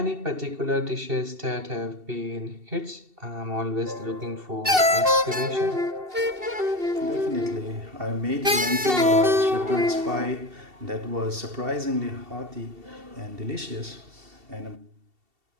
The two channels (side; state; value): left; late; 2.7 ms